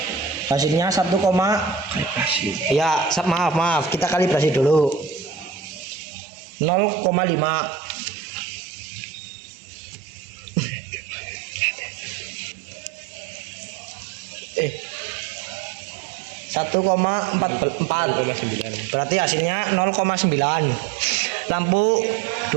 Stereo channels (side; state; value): left; drops out; at 5.9 s